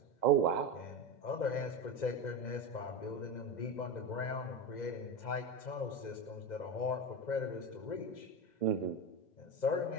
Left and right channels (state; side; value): late; right; 2.0 ms